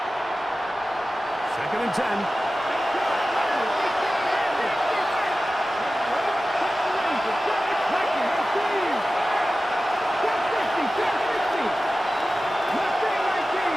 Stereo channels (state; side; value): normal; both; correlation 0.95